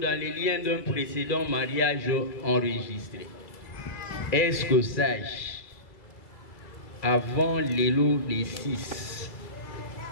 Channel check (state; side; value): late; right; 2.2 ms